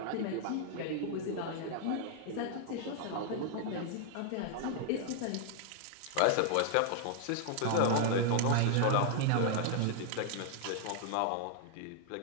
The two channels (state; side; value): different; both; correlation 0.00